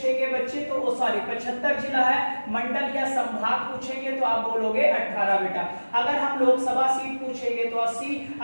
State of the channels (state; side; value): inverted; both; correlation -1.00